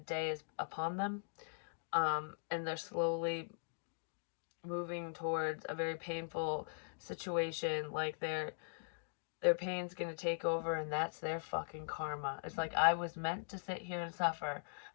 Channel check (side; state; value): right; silent; digital silence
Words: Day is upon them, and they're slowly moving towards a very painful situation. Like their pain's gonna take over, and that's their fucking karma. It's like, I was meant to sit here and suffer